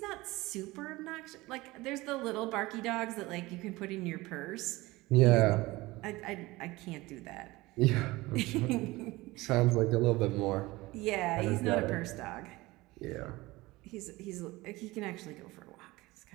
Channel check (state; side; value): quieter; left; 20.4 dB